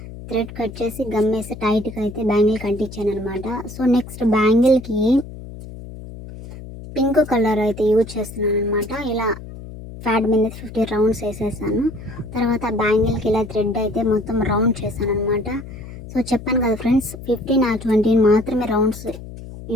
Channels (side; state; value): left; noise; hum, 13 dB below the sound